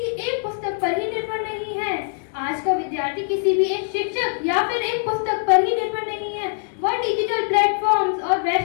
एक पुस्तक पर ही निर्भर नहीं है। आज का विद्यार्थी किसी भी एक शिक्षक या फिर एक पुस्तक पर ही निर्भर नहीं है। वह डिजिटल प्लेटफॉर्म्स और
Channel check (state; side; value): silent; right; digital silence